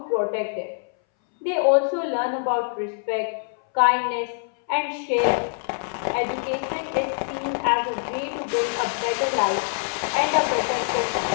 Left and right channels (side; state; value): right; silent; 60 dB below the other